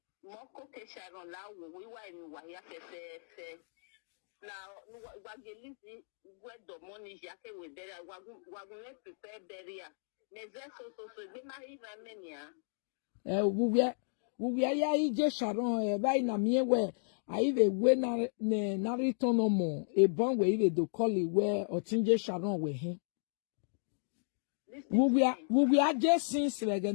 Moko ke Sharon la we wa ni wa ya fe. Now, Wagelizi, where the money yake we beria, wagun let prepare beria. So, they might even mania. We ya ije Sharon, by na me where I even we na return no more. A bon we even do call it where Otinje Sharon we him. We are just since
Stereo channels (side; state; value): right; silent; digital silence